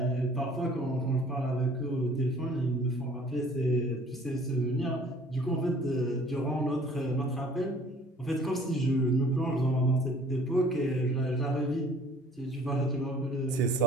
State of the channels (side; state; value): both; normal; correlation 0.53